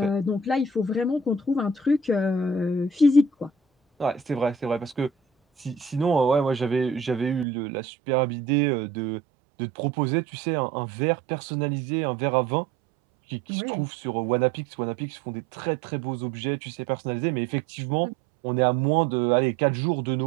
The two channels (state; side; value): drops out; left; at 7.5 s